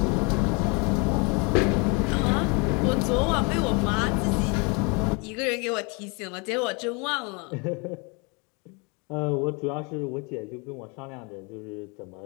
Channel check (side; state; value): right; quieter; 31.6 dB